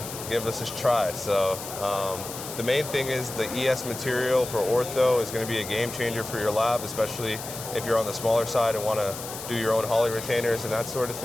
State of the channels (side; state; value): left; noise; hiss, 10 dB below the sound